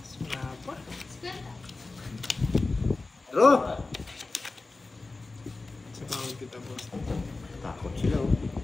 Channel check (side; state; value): right; quieter; 3.5 dB